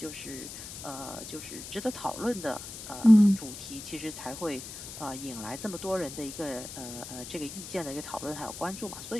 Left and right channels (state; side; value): noise; left; hiss, 10 dB below the sound